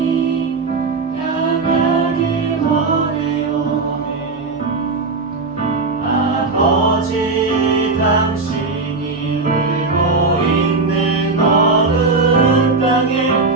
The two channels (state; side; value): quieter; left; 3.9 dB